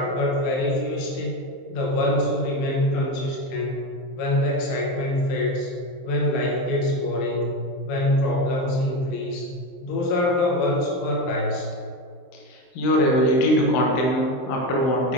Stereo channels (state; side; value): late; right; 23 ms